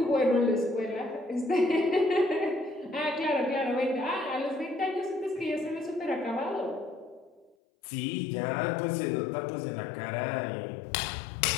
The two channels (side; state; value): right; drops out; at 7.6 s